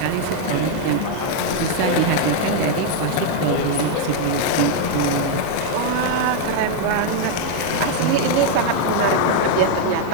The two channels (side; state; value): both; different; correlation 0.00